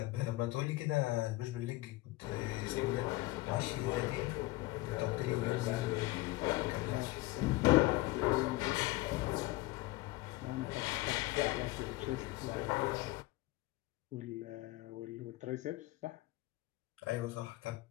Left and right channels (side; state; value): right; quieter; 19.7 dB